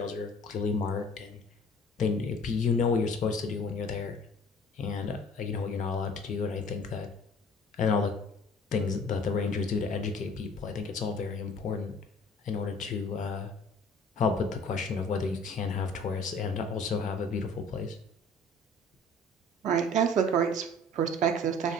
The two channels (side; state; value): both; normal; correlation 0.49